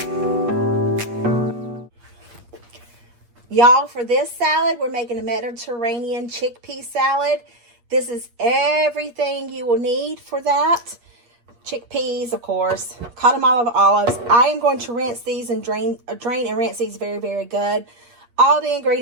for this salad, we're making a Mediterranean chickpea salad. This is everything you will need for that. Chickpeas, of course, cotton olives. I am going to rinse these and drain and rinse these very, very good. All the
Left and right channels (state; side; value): late; left; 8.4 ms